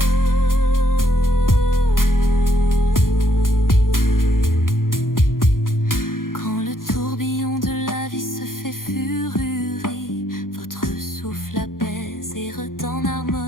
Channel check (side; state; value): right; late; 0.91 ms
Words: Quand le tourbillon de la vie se fait furie, votre souffle apaise et redonne